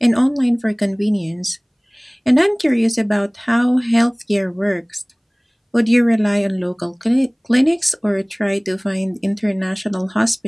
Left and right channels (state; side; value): identical; both; correlation 1.00